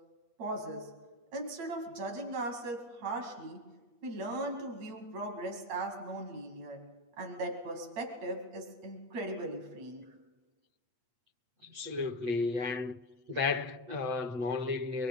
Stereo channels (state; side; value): late; left; 8.5 ms